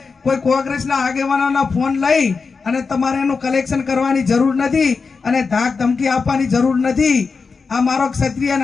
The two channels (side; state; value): right; quieter; 4.8 dB